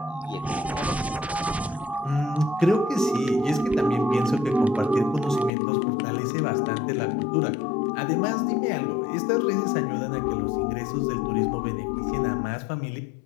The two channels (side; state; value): right; drops out; at 5.5 s